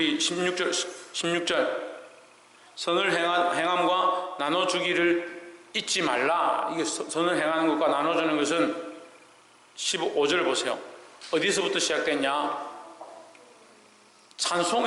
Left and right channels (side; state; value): both; identical; correlation 1.00